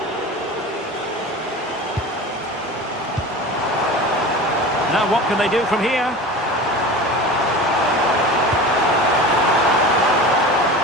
Now what can they do from here?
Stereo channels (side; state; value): both; normal; correlation 0.33